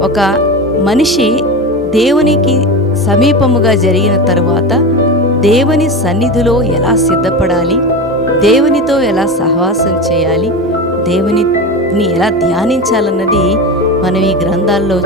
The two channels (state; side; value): normal; both; correlation 0.23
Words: ఒక మనిషి దేవునికి సమీపముగా జరిగిన తర్వాత దేవుని సన్నిధిలో ఎలా సిద్ధపడాలి, దేవునితో ఎలా సహవాసం చేయాలి, దేవునిని ఎలా ధ్యానించాలన్నది మనం ఈ గ్రంథాల్లో